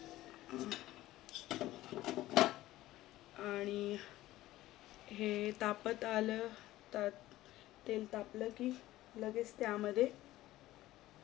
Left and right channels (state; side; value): quieter; right; 15.9 dB